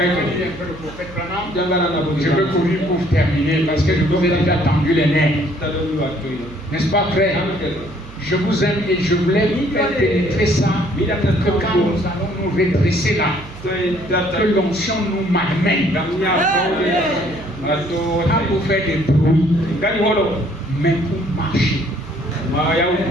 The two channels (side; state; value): right; noise; hum, 18 dB below the sound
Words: dit un peu le prophète Branham, je veux courir pour terminer parce que je vous ai déjà tendu les nerfs. N'est-ce pas, frère? Je vous aime et je voulais faire pénétrer ça, que quand nous allons nous redresser là, que l'onction nous malmène. Pas pour faire des bruits, mais pour marcher.